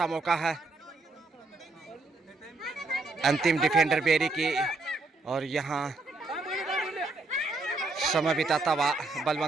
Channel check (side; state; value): left; quieter; 3.4 dB